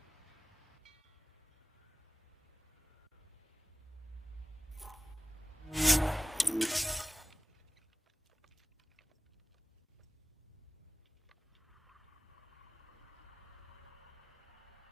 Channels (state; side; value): normal; both; correlation 0.92